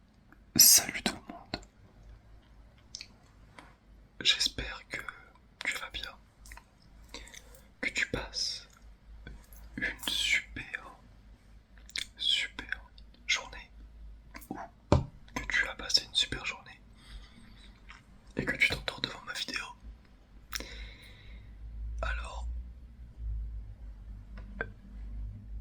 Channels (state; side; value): identical; both; correlation 1.00